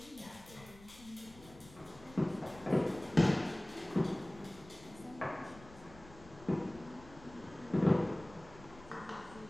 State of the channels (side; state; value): left; noise; rumble, 20 dB below the sound